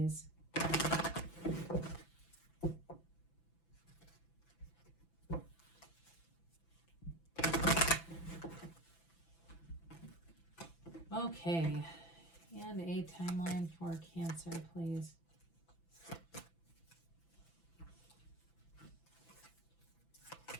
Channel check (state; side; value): late; right; 6.0 ms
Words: Okay, and a timeline for Cancer, please.